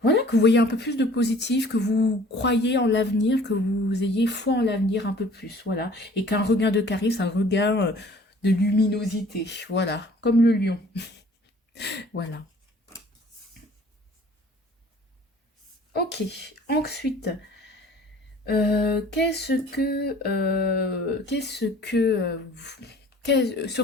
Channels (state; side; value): normal; both; correlation 0.51